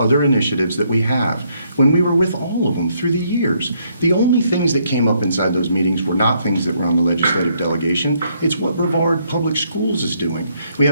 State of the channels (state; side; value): inverted; both; correlation -0.72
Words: initiatives that we have when we were with all of them through the years. The only things that came up inside those meetings were not things that were on the legislative delegation. It's what Brevard Public Schools is doing. We